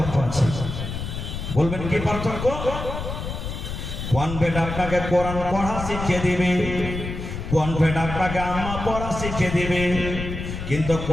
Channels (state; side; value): noise; left; rumble, 6 dB below the sound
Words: আছে। বলবেন কি পার্থক্য? কনভেন্ট আপনাকে কোরআন পড়া শিখিয়ে দিবে, কনভেন্ট আপনাকে আম্মা পড়া শিখিয়ে দিবে, কিন্তু